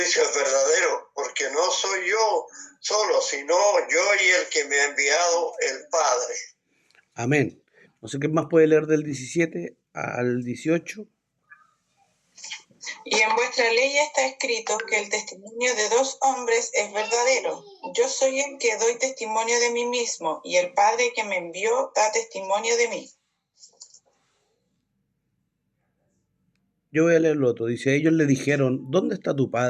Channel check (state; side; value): identical; both; correlation 1.00